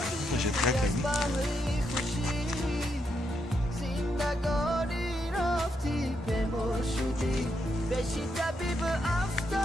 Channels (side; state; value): both; normal; correlation 0.80